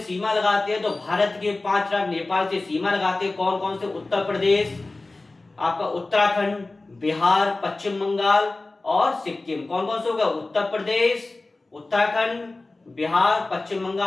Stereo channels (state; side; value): quieter; right; 3.2 dB